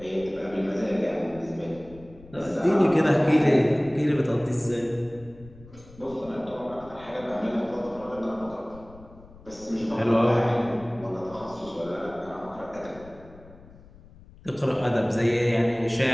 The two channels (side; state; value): left; noise; rumble, 21 dB below the sound